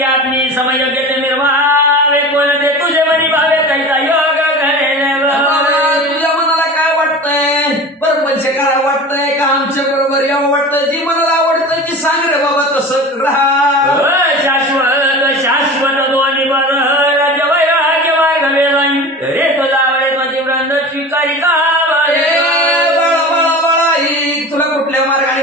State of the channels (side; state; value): both; normal; correlation 0.34